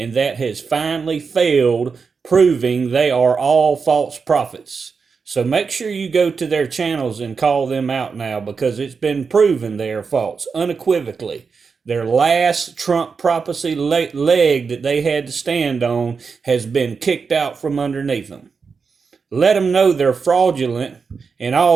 that has finally failed, proving they are all false prophets. So make sure you go to their channels and call them out now, because it's been proven they are false, unequivocally. Their last Trump prophecy leg that they had to stand on has been kicked out from underneath them. Let them know they're fraudulent, and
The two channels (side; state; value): left; quieter; 5.3 dB